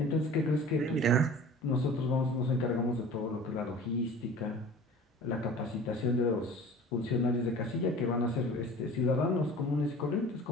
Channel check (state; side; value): normal; both; correlation 0.42